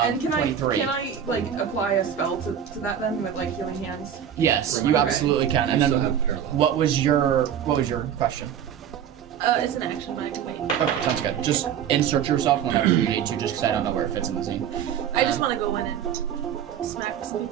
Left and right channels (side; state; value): left; quieter; 9.0 dB